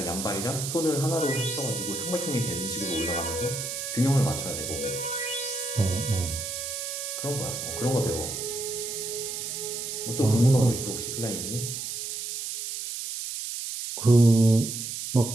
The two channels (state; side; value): noise; right; hiss, 5 dB below the sound